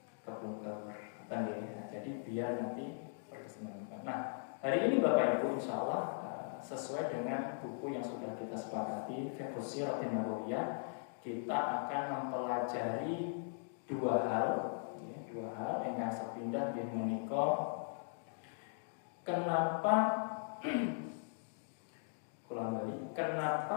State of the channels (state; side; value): silent; right; digital silence